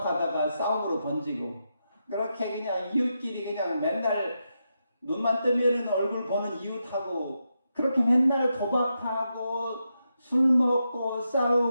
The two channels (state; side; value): inverted; both; correlation -0.86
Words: 싸움으로 번지고 그렇게 그냥 이웃끼리 그냥 맨날 눈만 뜨면은 얼굴 보는 이웃하고 그렇게 맨날 도박하고 술 먹고